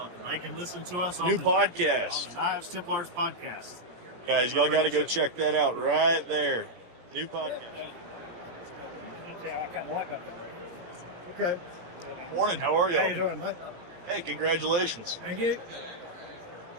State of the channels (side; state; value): left; late; 17 ms